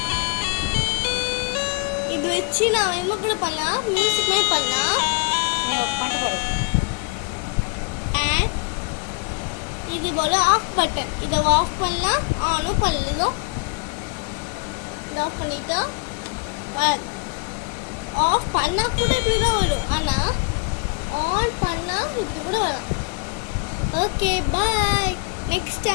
இது வச்சு நான் என்ன கூட பண்ணலாம், மியூசிக் மாதிரி பண்ணலாம். அண்ட் இது போல ஆஃப் பட்டன், இதை ஆஃப் பண்ணலாம், ஆனும் பண்ணலாம். இதை ஆஃப் பண்ணிட்டா ஆஃப் பண்ணால் கூட இப்படி தான் வரும். ஆனால் ஆன் பண்ணால் இப்படி கூட வரும். Okay bye. நெக்ஸ்ட்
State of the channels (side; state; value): right; quieter; 30.9 dB